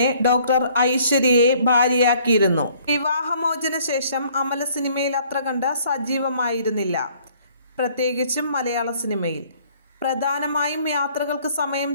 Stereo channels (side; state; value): both; inverted; correlation -0.60